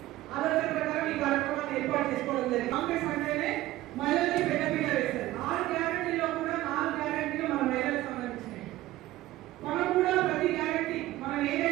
ఆలోచన ప్రకారం ఈ కార్యక్రమాన్ని ఏర్పాటు చేసుకోవడం జరిగింది. కాంగ్రెస్ అంటేనే మహిళల్ని పెద్దపీట వేస్తారు. 6 గ్యారెంటీలో కూడా 4 గ్యారెంటీలు మన మహిళలకు సంబంధించినవి. మనం కూడా ప్రతి గ్యారెంటీ మనం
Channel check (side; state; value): left; quieter; 16.2 dB